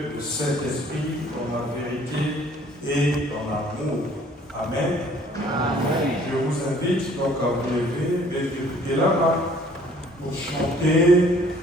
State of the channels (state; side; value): normal; both; correlation 0.57